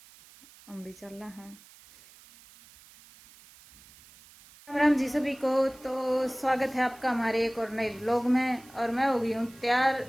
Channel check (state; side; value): noise; right; hiss, 24 dB below the sound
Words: हम भी चल रहा हैं। राम राम जी सभी को। तो स्वागत है आपका हमारे एक और नए ब्लॉग में, और मैं हो गई हूँ तैयार।